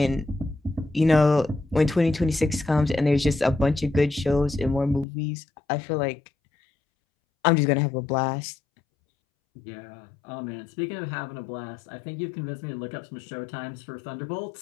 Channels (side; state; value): right; drops out; at 5.1 s